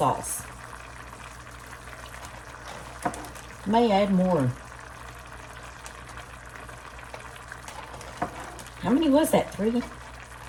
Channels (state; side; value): identical; both; correlation 1.00